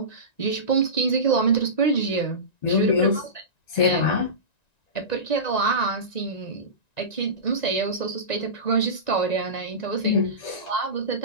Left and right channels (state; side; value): late; right; 1.9 ms